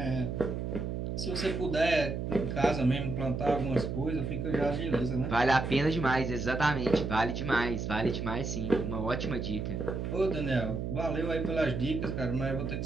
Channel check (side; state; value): right; noise; hum, 3 dB below the sound